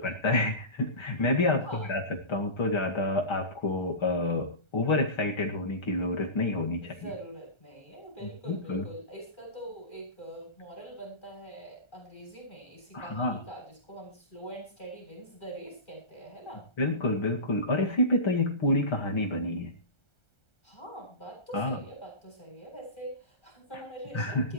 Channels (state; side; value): late; right; 1.3 ms